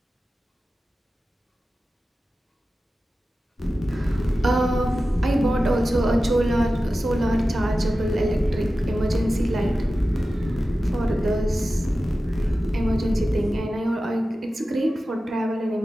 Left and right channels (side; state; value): both; normal; correlation 0.94